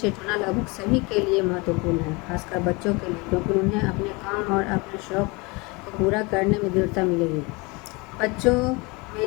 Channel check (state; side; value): quieter; right; 26.8 dB